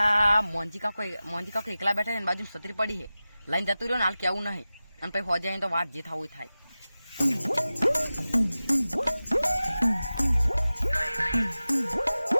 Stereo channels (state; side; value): inverted; both; correlation -0.96